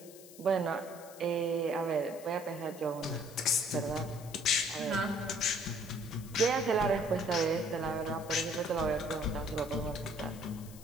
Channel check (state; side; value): noise; left; hiss, 18 dB below the sound